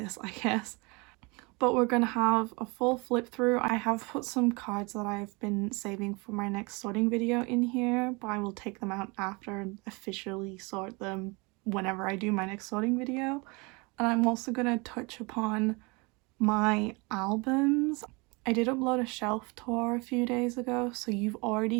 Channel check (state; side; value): quieter; left; 27.9 dB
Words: I guess. But we're gonna have a full flip through. I have put some cards that I've been saving for my next sorting video in here, but I will take them out after and officially sort them whenever I do my next sorting video. And I'm also gonna touch upon my albums. I did upload a shelf tour a few days ago, so you've